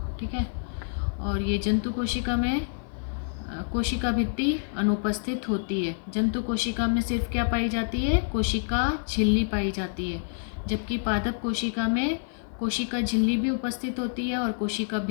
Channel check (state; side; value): silent; right; 55 dB below the other